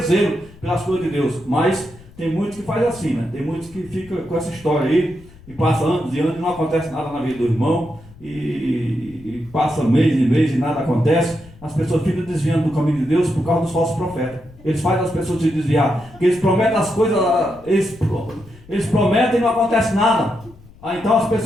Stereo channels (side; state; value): left; noise; rumble, 22 dB below the sound